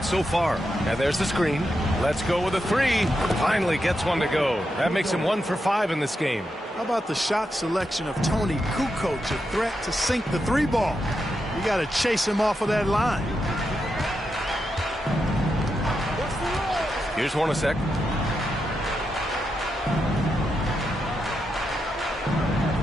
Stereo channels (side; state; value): both; normal; correlation 0.86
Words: so far. And there's the screen. Let's go with a 3. Finally gets one to go. That makes him 1 for 5 in this game. How about the shot selection of Tony Kukoc, a threat to sink the 3 ball? You got to chase him off of that line. Here's Hornacek.